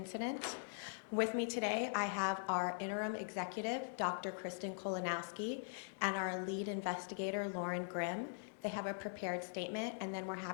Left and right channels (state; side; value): silent; right; digital silence